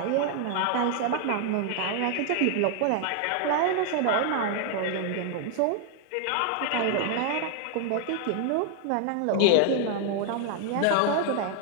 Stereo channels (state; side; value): different; both; correlation 0.00